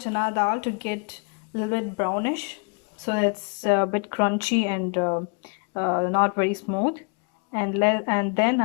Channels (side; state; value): right; quieter; 36.2 dB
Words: dal to get a little bit brownish, so it's a bit crunchy and not very smooth. And then